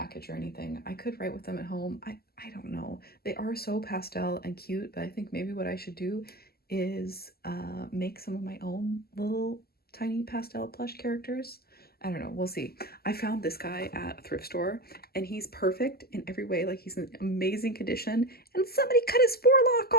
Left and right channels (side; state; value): right; late; 0.45 ms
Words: or anything. I could write with them at home. I don't know. They are so pastel and cute, but I think maybe what I should do is make some of my own little tiny pastel plush characters. I don't know. We'll see. I found this guy at a thrift store, and he's perfect in every way. Like, he's in amazing condition, and somebody cut his forelock